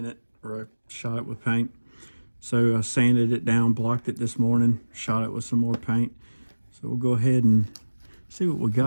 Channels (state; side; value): inverted; both; correlation -1.00